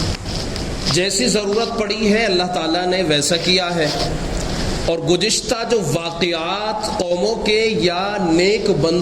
جیسی ضرورت پڑی ہے اللہ تعالیٰ نے ویسا کیا ہے، اور گزشتہ جو واقعات قوموں کے یا نیک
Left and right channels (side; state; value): both; identical; correlation 1.00